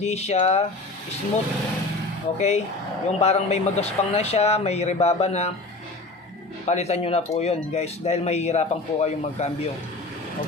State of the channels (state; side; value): quieter; right; 3.1 dB